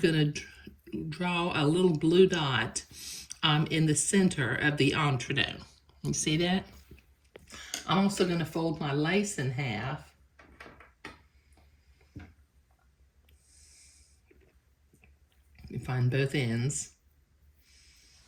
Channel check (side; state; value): both; identical; correlation 1.00